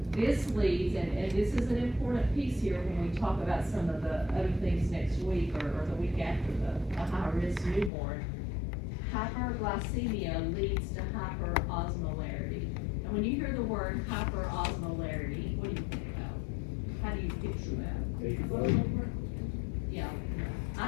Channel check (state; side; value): drops out; right; at 7.9 s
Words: This leads, and this is an important piece here when we talk about some of the other things next week or the week after the high-risk newborn. Hyperglycemia leads to hyperosmolarity. And when you hear the word hyperosmolarity, what do you think about? How do you picture that?